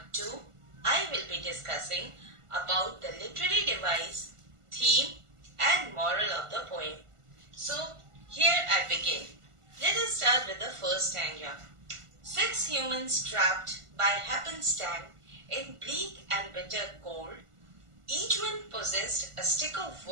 2, I will be discussing about the literary device, theme and moral of the poem. So here I begin. Let us start with the first stanza. 6 humans trapped by happenstance in bleak and bitter cold. Each one possessed a stick of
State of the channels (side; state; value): left; late; 1.4 ms